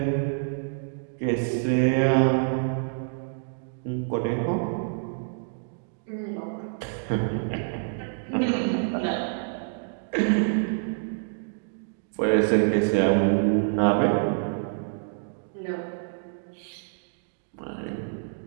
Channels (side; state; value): left; silent; digital silence